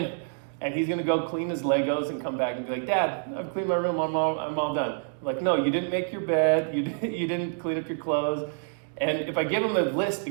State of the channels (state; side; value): silent; left; digital silence